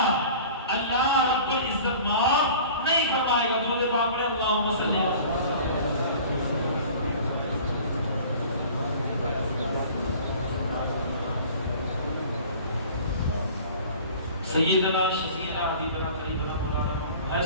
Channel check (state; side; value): inverted; both; correlation -0.44